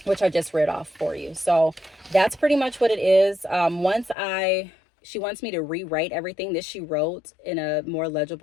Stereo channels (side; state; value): right; drops out; at 4.2 s